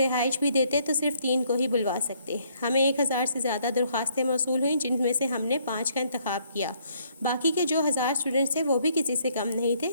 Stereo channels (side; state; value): both; inverted; correlation -0.67